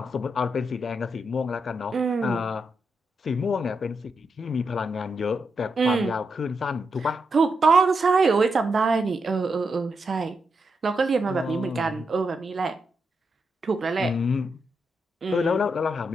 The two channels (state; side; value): normal; both; correlation 0.84